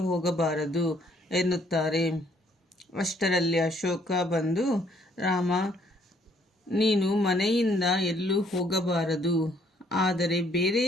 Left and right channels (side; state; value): both; normal; correlation 0.65